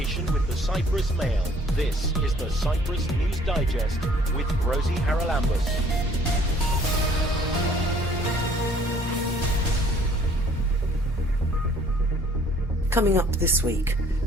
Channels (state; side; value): normal; both; correlation 0.58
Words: with the Cyprus Mail. This is the Cyprus News Digest with Rosie Charalambous. Coming up this week,